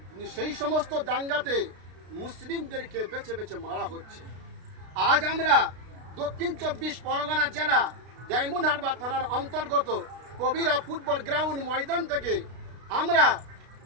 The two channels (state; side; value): late; left; 32 ms